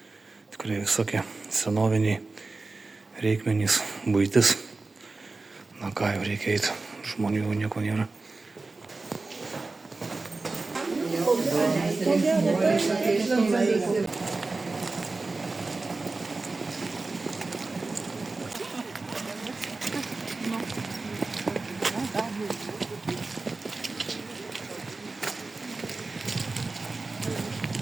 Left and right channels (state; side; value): quieter; left; 3.6 dB